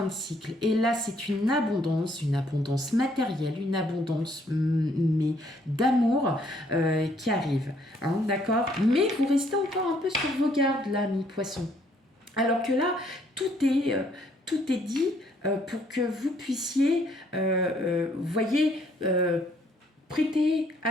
de cycle. Et là, c'est une abondance matérielle, une abondance mais d'amour qui arrive. Hein, d'accord? Mais vous restez encore un peu sur vos gardes, là, mi-poisson. Alors que là, tout est dit pour que vous puissiez, voyez, prêter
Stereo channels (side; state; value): both; normal; correlation 0.66